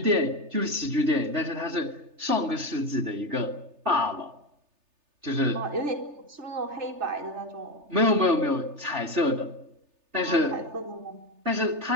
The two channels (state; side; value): late; left; 3.3 ms